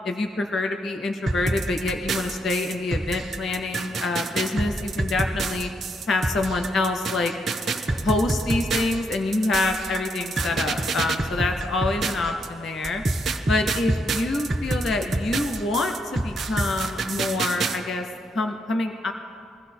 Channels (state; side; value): normal; both; correlation 0.77